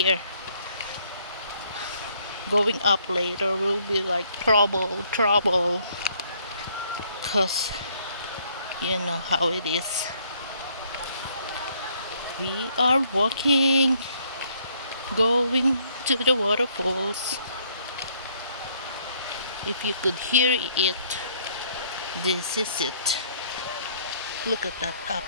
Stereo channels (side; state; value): both; inverted; correlation -0.65